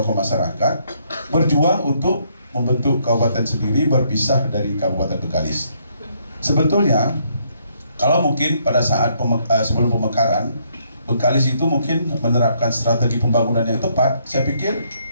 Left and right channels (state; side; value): inverted; both; correlation -0.71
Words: masyarakat berjuang untuk membentuk kabupaten sendiri berpisah dari Kabupaten Bengkalis. Sebetulnya kalau mungkin pada saat sebelum pemekaran Bengkalis itu mungkin menerapkan strategi pembangunan yang tepat, saya pikir